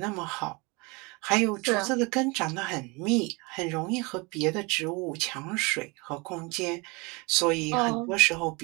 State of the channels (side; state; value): left; quieter; 27.5 dB